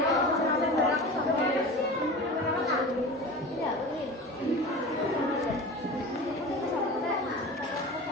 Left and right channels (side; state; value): both; normal; correlation 0.33